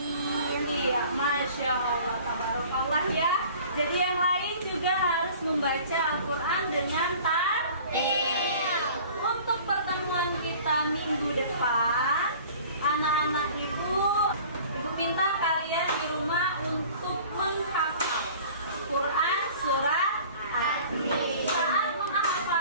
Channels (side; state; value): both; inverted; correlation -0.47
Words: Iya, Masya Allah, tabarakallah ya. Jadi yang lain juga harus membaca Al-Quran dengan tartil. Untuk pertemuan kita minggu depan, anak-anak ibu minta kalian di rumah untuk menghafal Quran surat Atin. Saat